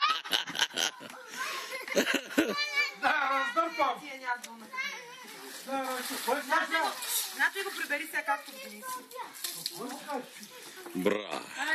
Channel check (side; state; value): both; identical; correlation 1.00